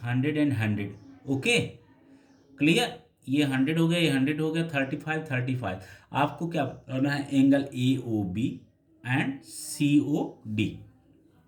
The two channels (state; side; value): identical; both; correlation 1.00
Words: 100 एंड 100. Okay, clear. ये 100 हो गया, ये 100 हो गया, 35. आपको क्या करना है, angle A O B and C O D.